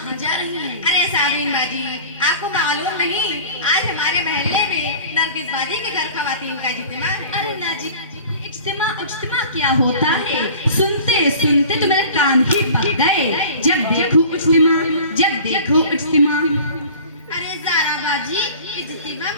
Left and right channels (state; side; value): inverted; both; correlation -0.42